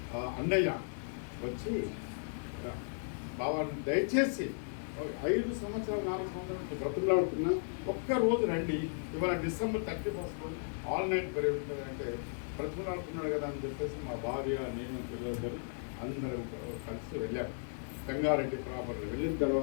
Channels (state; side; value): silent; right; digital silence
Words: అన్నయ్య వచ్చి, బావాన్ని దయచేసి 5 సంవత్సరాలు 4 సంవత్సరాలు బ్రతుకులాడుతున్నా ఒక్కరోజు రండి, ఇవాళ December 31 ఆల్ నైట్ ప్రేయర్ ఉంటుంది అంటే బ్రతుకులాడుతున్నాడు కదా అని చెప్పేసి మా భార్య, నేను, పిల్లలు అందరూ కలిసి వెళ్ళాము. సంగారెడ్డి ప్రాపర్లో వెళ్ళిన